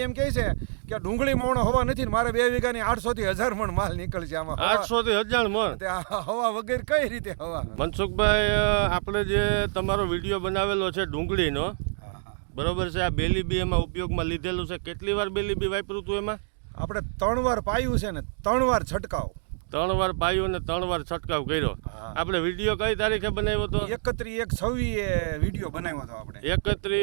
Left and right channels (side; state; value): left; silent; digital silence